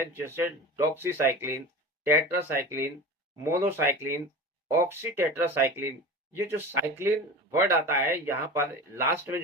जैसे डॉक्सीसाइक्लिन, टेट्रासाइक्लिन, मोनोसाइक्लिन, ऑक्सीटेट्रासाइक्लिन। ये जो साइक्लिन वर्ड आता है यहाँ पर लास्ट में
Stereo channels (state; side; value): normal; both; correlation 0.33